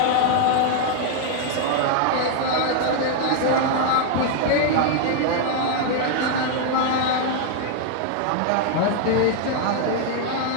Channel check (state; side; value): different; both; correlation 0.00